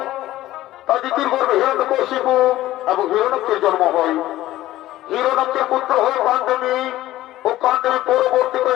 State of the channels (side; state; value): right; quieter; 15.3 dB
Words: তার দিদির গর্ভে হিরণ্যকশিপু এবং হিরণ্যকের জন্ম হয়। হিরণ্যকের পুত্র হয়ে কাণ্ডেমী ও কাণ্ডেমী